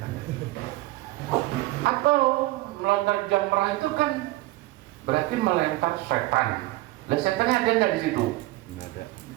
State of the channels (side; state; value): left; quieter; 18.8 dB